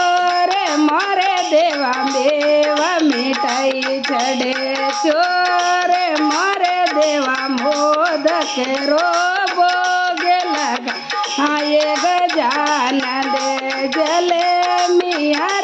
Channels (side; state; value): both; identical; correlation 1.00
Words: मोरे देवा, मेवा मिठाई चढ़े चोर मोरे देवा, मोद दूध केरो भोगे लगा ये गजानन जले मिया